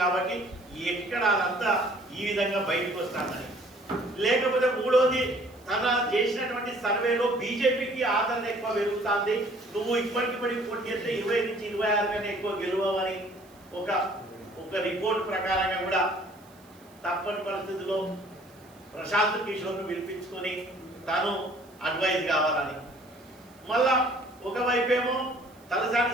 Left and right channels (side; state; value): right; noise; hiss, 28 dB below the sound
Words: కాబట్టి ఎక్కడ అదంతా ఈ విధంగా బయటకు వస్తానని. లేకపోతే మూడోది తన చేసినటువంటి సర్వేలో బీజేపీకి ఆదరణ ఎక్కువ పెరుగుతుంది, నువ్వు ఇప్పటికిప్పటికి పోటీ చేస్తే 20 నుంచి 26 కన్నా ఎక్కువ గెలవని ఒక రిపోర్ట్ ప్రకారంగా కూడా తప్పని పరిస్థితిలో ప్రశాంత్ కిషోర్ను పిలిపించుకొని తను అడ్వైజ్ కావాలని. మళ్ళా ఒకవైపేమో